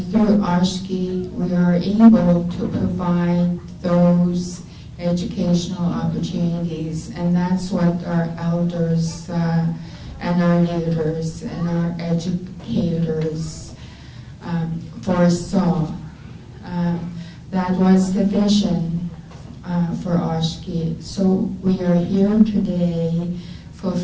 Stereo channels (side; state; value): both; identical; correlation 1.00